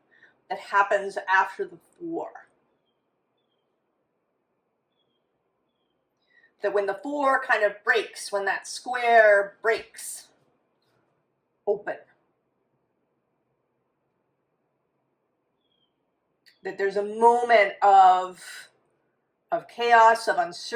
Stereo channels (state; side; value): identical; both; correlation 1.00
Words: that happens after the four. That when the four kind of breaks, when that square breaks open, that there's a moment of chaos, of